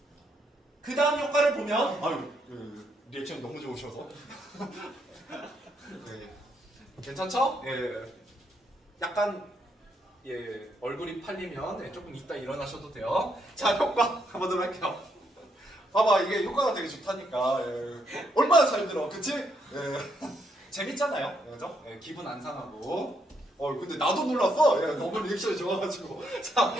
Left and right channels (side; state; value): both; normal; correlation 0.76